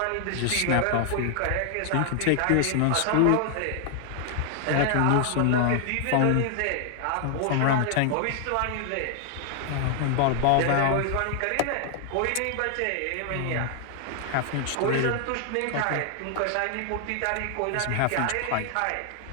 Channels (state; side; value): different; both; correlation 0.00